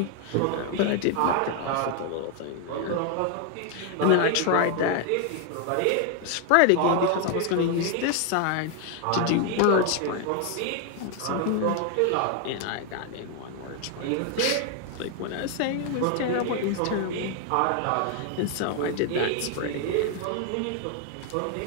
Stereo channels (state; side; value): different; both; correlation 0.00